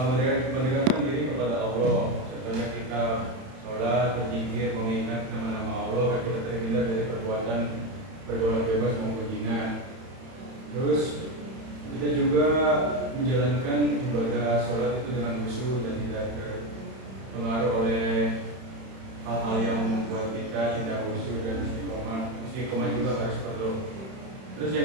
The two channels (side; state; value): left; late; 31 ms